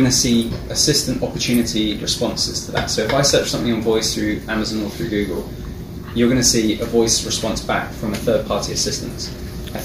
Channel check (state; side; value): identical; both; correlation 1.00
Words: to see assistant opportunity responses to that. So if I search something on voice through Amazon or through Google, you're going to see a voice response back from a third-party assistant. I